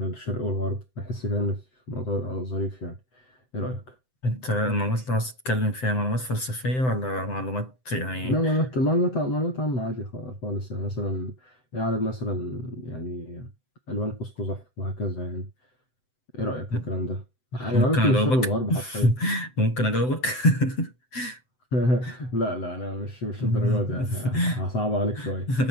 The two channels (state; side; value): late; right; 7.8 ms